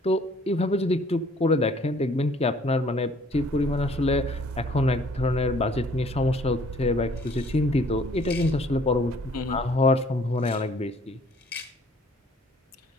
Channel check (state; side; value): normal; both; correlation 0.58